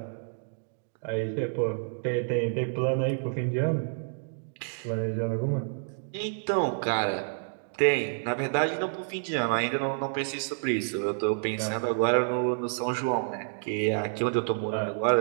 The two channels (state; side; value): silent; left; digital silence